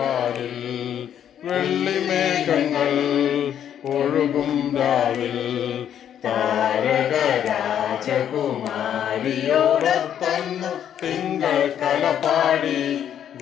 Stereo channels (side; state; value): right; quieter; 9.6 dB